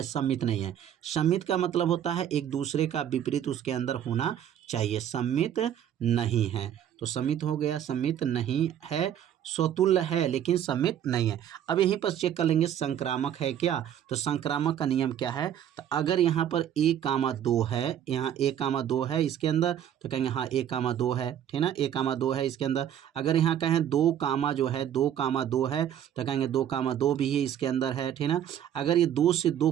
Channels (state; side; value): quieter; left; 10.2 dB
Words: सम्मित नहीं है। सम्मित का मतलब होता है एक दूसरे का विपरीत उसके अंदर होना चाहिए। सम्मित नहीं है, तो सम्मित हो गया, सम्मित नहीं है, स्वतुल्य है लेकिन सम्मित नहीं है। अब यहीं पर चेक कर लेंगे संक्रामक है क्या, तो संक्रामक का नियम क्या है, तो अगर यहाँ पर 1, 2 है, यहाँ 1, 2 है इसके अंदर, तो कहेंगे हाँ 1, 2 है, ठीक ना, 1, 2 है इसके अंदर। अगर यहाँ कहें 2, जो है 2, है, तो कहेंगे 2, भी है इसके अंदर है, ठीक ना। अगर ये 2 से 2